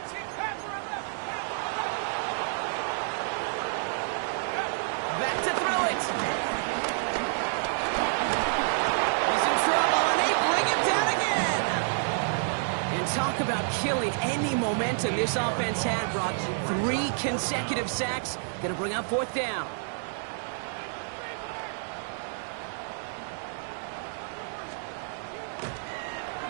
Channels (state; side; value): silent; left; digital silence